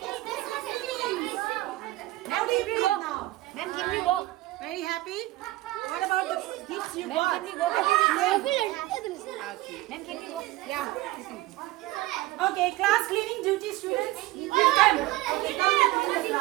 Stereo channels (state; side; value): quieter; left; 18.1 dB